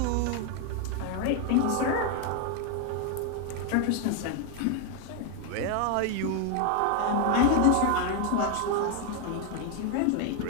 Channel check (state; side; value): different; both; correlation 0.01